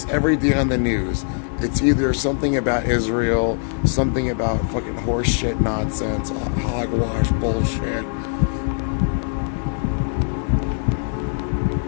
every day on the news, it's either something about Israel, something about fucking horse shit nonsense, hogwash bullshit.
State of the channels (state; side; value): silent; right; 65 dB below the other